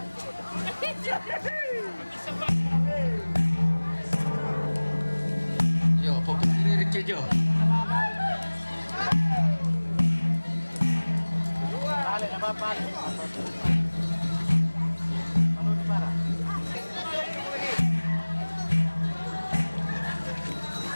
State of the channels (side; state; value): both; inverted; correlation -1.00